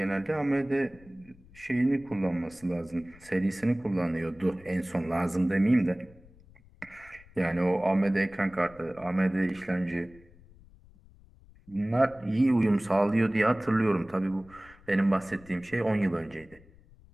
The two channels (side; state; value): left; noise; rumble, 25 dB below the sound